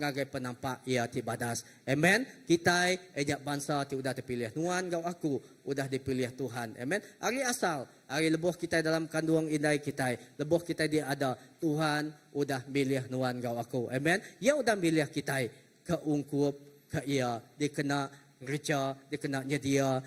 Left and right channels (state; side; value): identical; both; correlation 1.00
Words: ngagai penampak ia ti badas. Amen. Kita ejak bangsa ti udah dipilih. Nuan kau aku udah dipilih Tuhan. Amen. Hari asal. Hari lebuh kita dalam kandungan indai kita. Lebuh kita dia ada. Tuhan udah milih nuan kau aku. Amen. Ia udah milih kita. Keungkup ke ia. Dia kena kerja. Dia kena nyedia